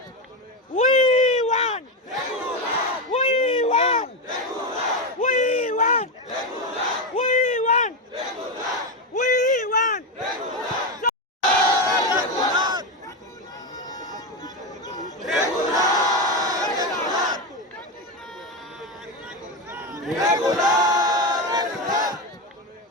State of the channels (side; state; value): both; normal; correlation 0.13